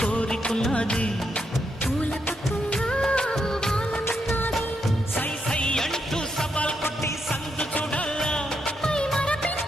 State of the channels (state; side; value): normal; both; correlation 0.81